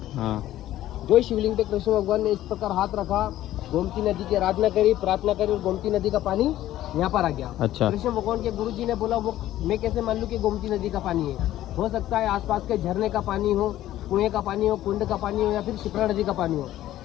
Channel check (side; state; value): right; quieter; 13.8 dB